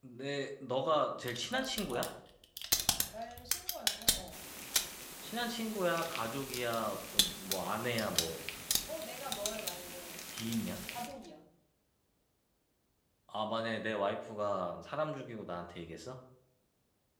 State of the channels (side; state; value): both; identical; correlation 1.00